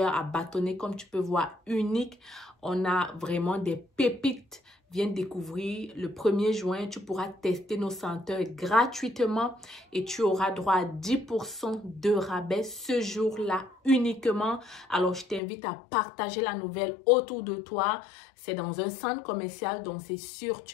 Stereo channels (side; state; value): right; drops out; at 15.4 s